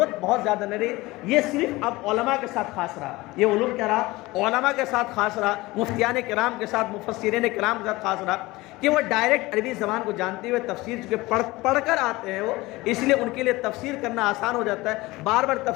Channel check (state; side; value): quieter; right; 20.5 dB